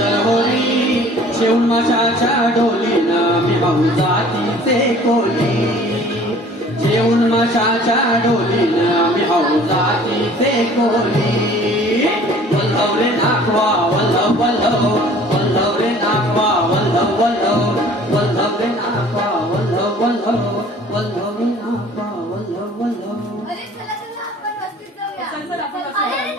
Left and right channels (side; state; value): both; normal; correlation 0.50